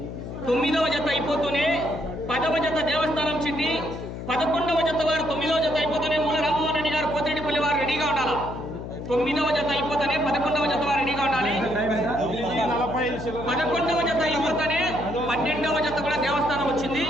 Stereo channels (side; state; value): left; noise; hum, 8 dB below the sound